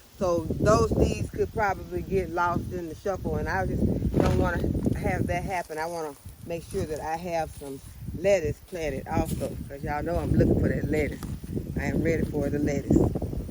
So those seeds could probably get lost in the shuffle, and I just don't want to have that happen. I want to make sure that I have some lettuce planted also, because y'all know I'm looking for that lettuce. I am ready for the lettuce.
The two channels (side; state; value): both; identical; correlation 1.00